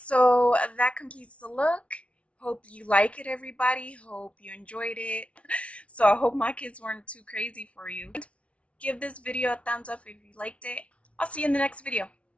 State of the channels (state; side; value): late; right; 0.062 ms